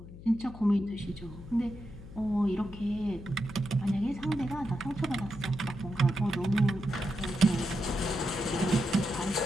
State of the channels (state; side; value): noise; left; hum, 15 dB below the sound